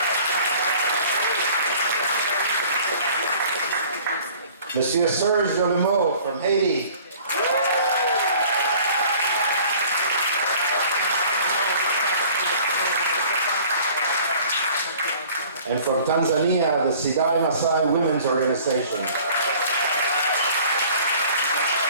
Monsieur Serge Jolimeau from Haiti. And from Tanzania, the Sidai Massai Women's Organization.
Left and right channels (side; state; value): both; inverted; correlation -0.50